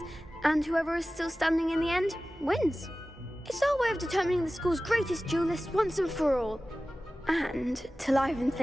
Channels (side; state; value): both; normal; correlation 0.96